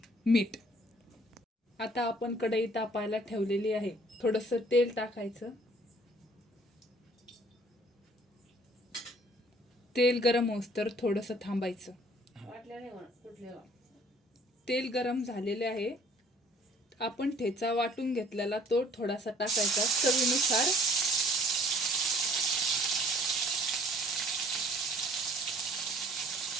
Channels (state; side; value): normal; both; correlation 0.56